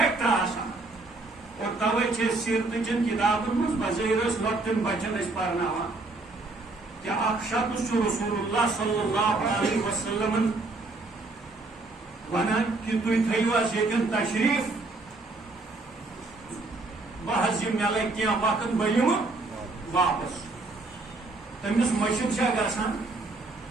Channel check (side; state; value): left; quieter; 3.3 dB